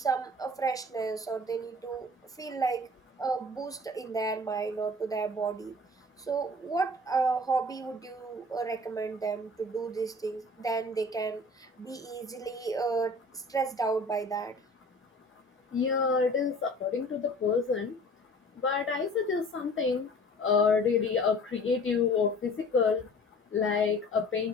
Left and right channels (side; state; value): both; normal; correlation 0.46